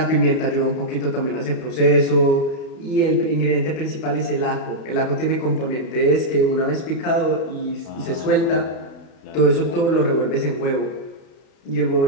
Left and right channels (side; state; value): right; late; 31 ms